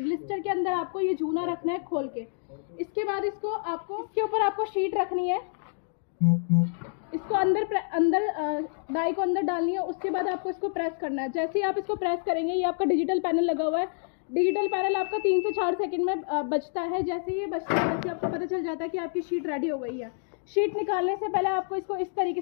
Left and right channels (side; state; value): right; silent; 59 dB below the other